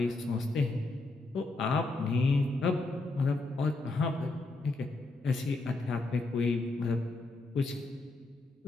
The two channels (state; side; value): quieter; right; 3.1 dB